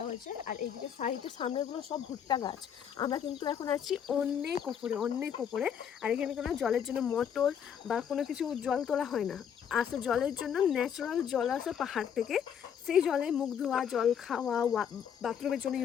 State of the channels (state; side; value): quieter; right; 8.3 dB